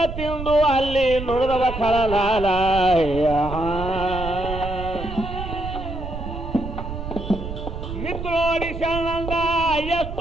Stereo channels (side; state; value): right; noise; rumble, 7 dB below the sound